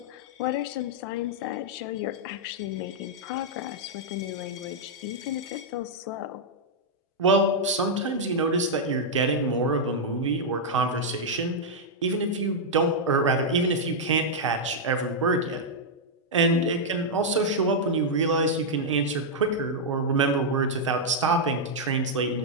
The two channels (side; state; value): both; normal; correlation -0.05